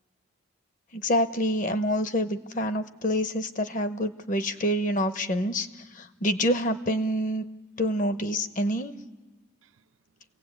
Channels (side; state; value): both; normal; correlation 0.29